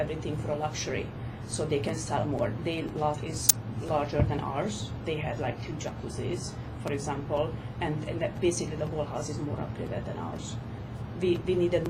for luxury, so they can sell more. Their lot is larger than ours. They had like 2 jacuzzis, for example, and that basically the whole house is more upgraded than ours. We needed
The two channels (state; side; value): identical; both; correlation 1.00